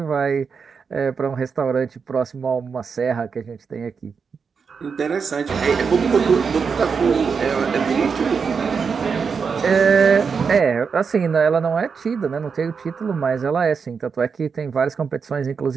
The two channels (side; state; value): left; quieter; 5.8 dB